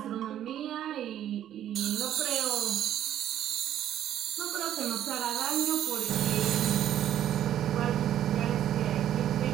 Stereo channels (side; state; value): left; quieter; 11.2 dB